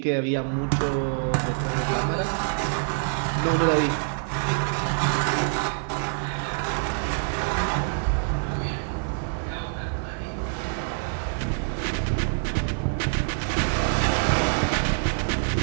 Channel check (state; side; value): silent; left; digital silence